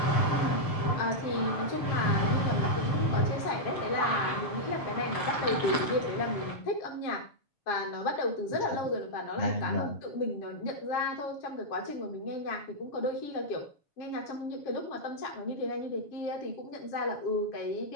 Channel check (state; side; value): late; right; 6.7 ms